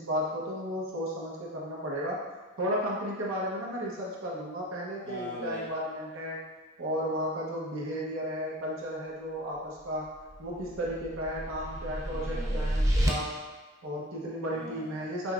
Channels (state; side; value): normal; both; correlation 0.36